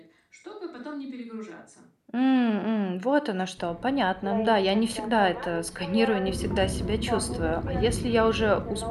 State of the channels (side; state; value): both; identical; correlation 1.00